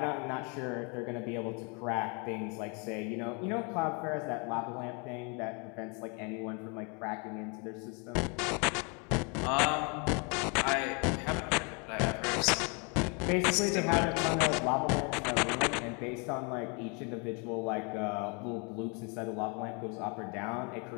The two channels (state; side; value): quieter; right; 33.6 dB